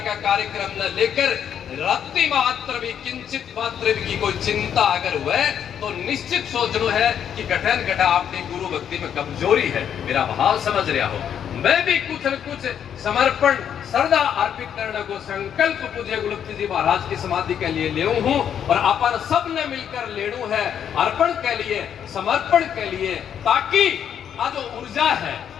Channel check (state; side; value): quieter; right; 8.9 dB